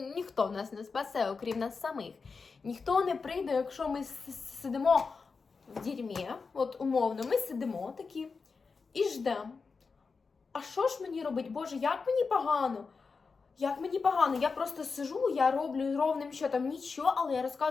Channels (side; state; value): right; quieter; 4.8 dB